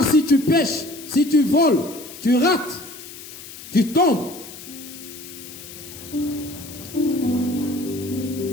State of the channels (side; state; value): left; noise; hiss, 15 dB below the sound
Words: si tu pêches, si tu voles, tu rates, tu tombes.